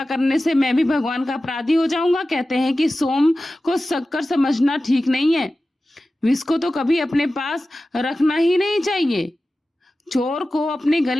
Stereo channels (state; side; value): normal; both; correlation 0.95